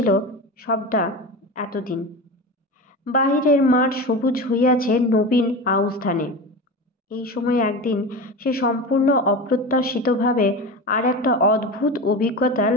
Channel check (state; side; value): normal; both; correlation 0.27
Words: সবটা এতদিন। বাহিরের মাঠ সবুজ হইয়াছে নবীন আউশ ধানে। এই সময় একদিন সে সম্পূর্ণ অপ্রত্যাশিতভাবে আর একটা অদ্ভুত অভিজ্ঞতা